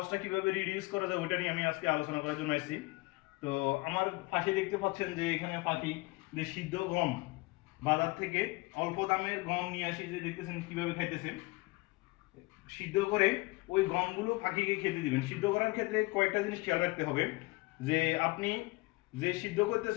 কিভাবে রিডিউস করা যায় ওইটা নিয়ে আমি আজকে আলোচনা করার জন্য এসেছি। তো আমার পাশে দেখতে পাচ্ছেন যে এখানে পাখি যে সিদ্ধ গম বাজার থেকে অল্প দামের গম নিয়ে আসি, যে দেখতেছেন কিভাবে খাইতেছে। সিদ্ধ করে ওই গমগুলো পাখিকে খেতে দিবেন। সিদ্ধ করার ক্ষেত্রে কয়েকটা জিনিস খেয়াল রাখতে হবে, যে আপনি যে সিদ্ধ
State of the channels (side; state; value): right; quieter; 23.8 dB